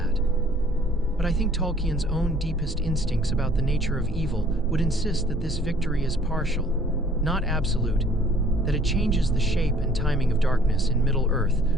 But I think Tolkien's own deepest instincts about the nature of evil would insist that this victory is partial, not absolute, that it changes the shape and timing of darkness in Middle-earth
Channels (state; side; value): normal; both; correlation 0.57